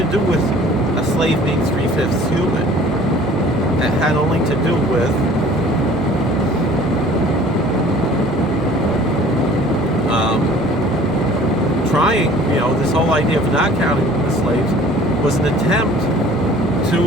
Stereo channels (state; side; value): normal; both; correlation 0.50